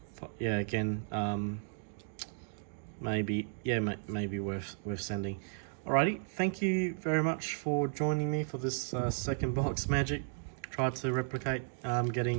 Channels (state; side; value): silent; left; digital silence